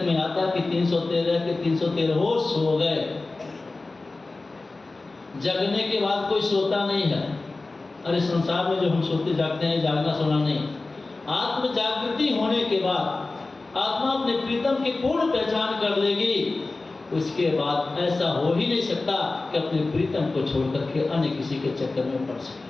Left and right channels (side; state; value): right; quieter; 3.4 dB